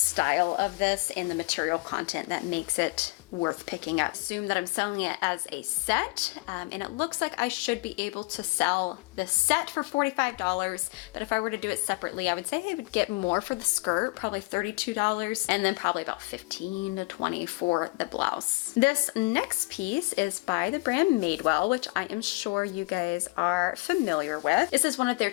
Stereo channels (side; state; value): right; quieter; 26.7 dB